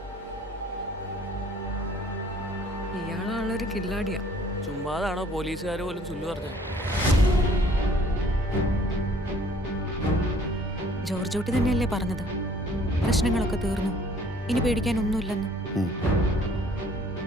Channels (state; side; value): normal; both; correlation 0.57